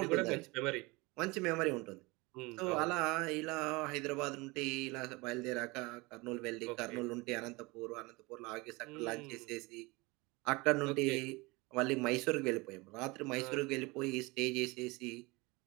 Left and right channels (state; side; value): quieter; left; 24.3 dB